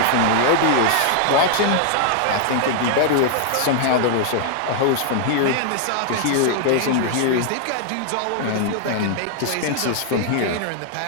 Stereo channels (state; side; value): different; both; correlation 0.00